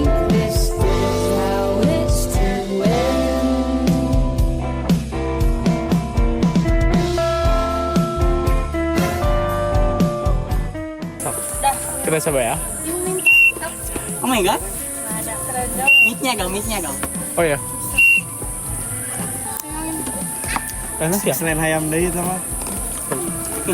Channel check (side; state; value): both; identical; correlation 1.00